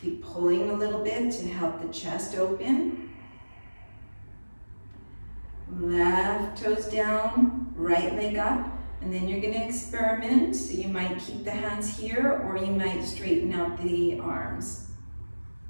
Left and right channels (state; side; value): inverted; both; correlation -1.00